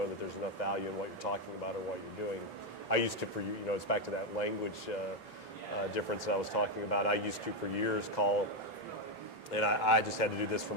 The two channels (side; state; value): both; normal; correlation 0.05